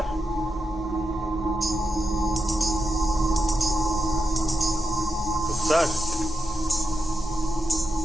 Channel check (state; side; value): normal; both; correlation 0.86